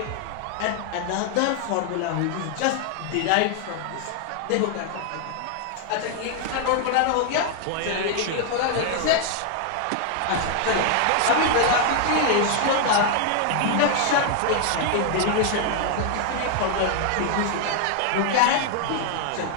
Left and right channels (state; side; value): different; both; correlation 0.00